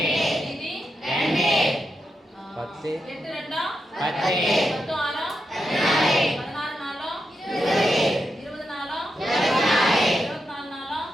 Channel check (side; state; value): both; normal; correlation 0.86